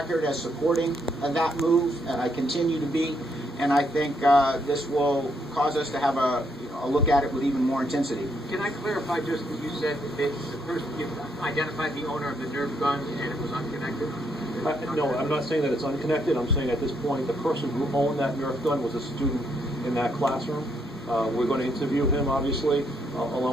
as supporting that move, and I continue to be. And I think this will cause us to have a look at it with even more intensity. Can I clarify just that you said that the person, you identified the owner of the Nerf gun and it was unconnected? No, I'm not saying that it's unconnected. I'm saying at this point the person who owned that Nerf gun was a student in that classroom. We're going to interview him, obviously,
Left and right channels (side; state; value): both; normal; correlation 0.74